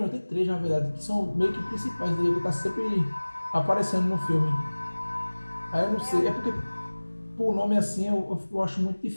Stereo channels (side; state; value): both; inverted; correlation -1.00